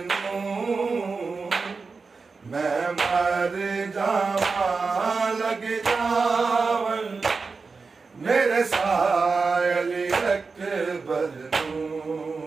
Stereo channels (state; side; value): quieter; left; 4.5 dB